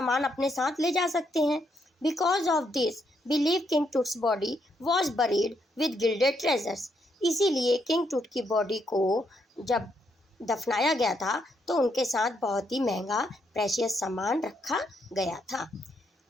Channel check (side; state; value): both; normal; correlation 0.76